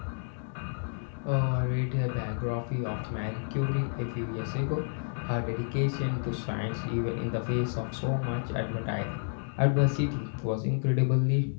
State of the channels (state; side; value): silent; right; digital silence